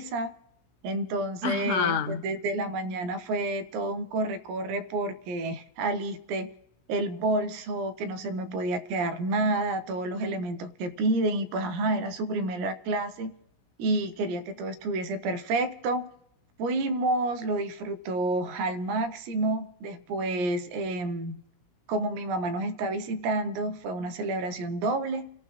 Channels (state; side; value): late; left; 17 ms